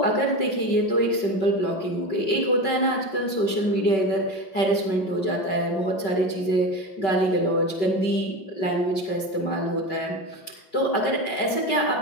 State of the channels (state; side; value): late; right; 5.2 ms